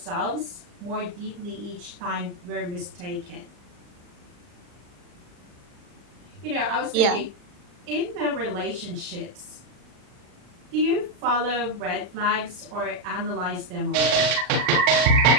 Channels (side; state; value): left; late; 40 ms